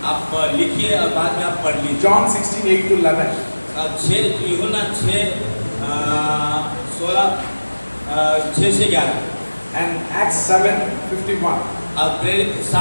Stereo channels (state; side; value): inverted; both; correlation -1.00